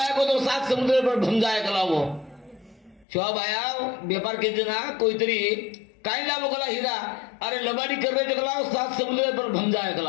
को तो 7 समुद्र पर भम जाए कलावो सेवा बाया व्यापार के जना कोई तरी काय लावो कला हीरा अरे लबाडी कर रहे कलावो 7 समुद्र पर भम जाए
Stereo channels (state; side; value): drops out; right; at 3.1 s